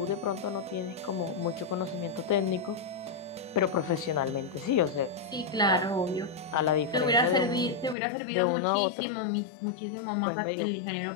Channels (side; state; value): right; drops out; at 8.0 s